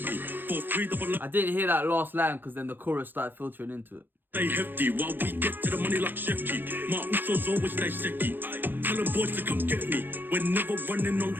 me. For 3 I didn't hear that last line because then the chorus started filtering into it. Stay hefty while we get to the money like Chef G. My usos always stay seki. Tell them boys to come get me. We're never running on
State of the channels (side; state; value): left; late; 0.095 ms